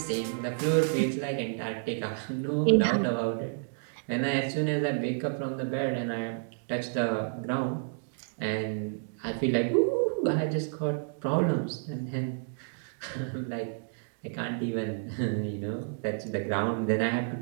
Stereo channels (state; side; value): silent; left; digital silence